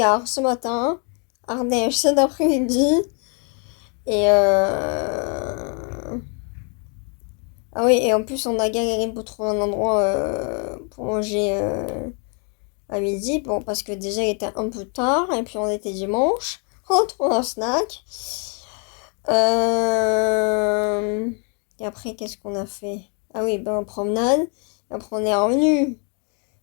ce matin. Ardèche cet après-midi. Et ah oui, et en plus, on a galéré pour trouver un endroit pour manger à midi. Bon, parce que déjà, il était un peu tard. Et puis, on était dimanche. On trouve un snack. Et après, qu'est-ce qu'on a fait? Ah oui, ben, promenade. Après, on est revenu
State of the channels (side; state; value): right; quieter; 38.4 dB